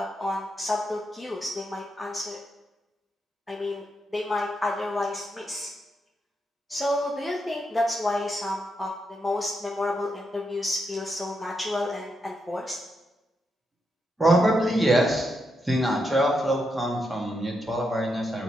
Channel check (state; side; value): normal; both; correlation 0.83